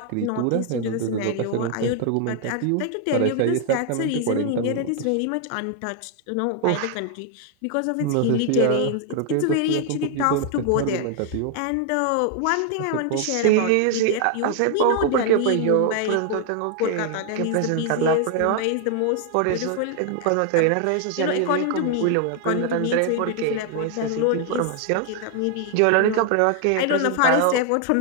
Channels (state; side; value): different; both; correlation 0.00